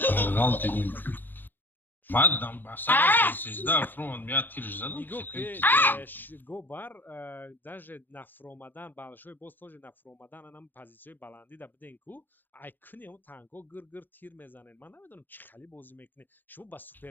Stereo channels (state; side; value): late; right; 0.091 ms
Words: Галт идем. Мадам, басара сезда фронт меня тирж задал. Гобар даже нафромадан балшой боз тоже нафромадан анам позициёи баланди да биден ку ай куни он танко гир тир мезанен ман намедонам чӣ хали бозӣ мекунед шумо ба